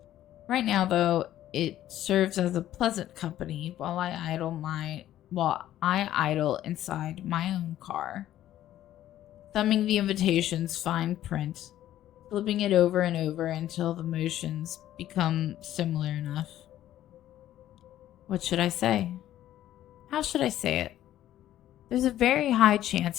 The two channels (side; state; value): right; quieter; 12.8 dB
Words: Right now, though, it serves as a pleasant company while I idle inside my own car, thumbing the invitation's fine print, flipping it over and over until the motions become similar enough. What should I say? How should I say it? There's a very high